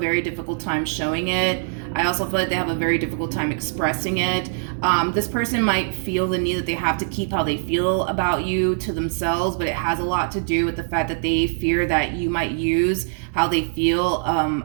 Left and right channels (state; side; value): silent; left; digital silence